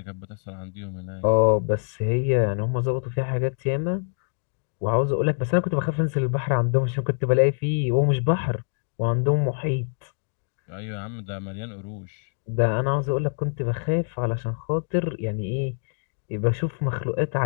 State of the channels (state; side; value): silent; right; digital silence